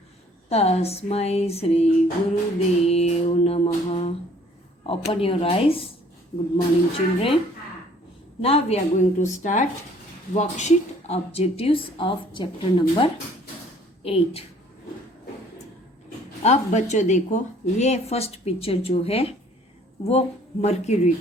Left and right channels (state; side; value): normal; both; correlation 0.57